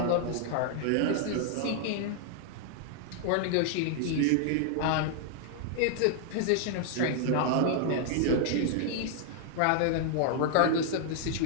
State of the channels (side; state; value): both; different; correlation -0.01